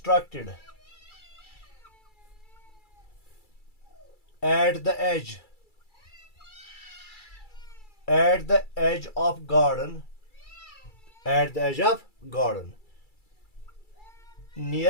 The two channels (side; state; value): right; late; 2.3 ms